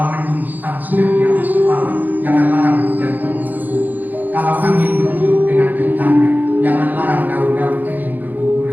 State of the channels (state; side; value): late; left; 0.084 ms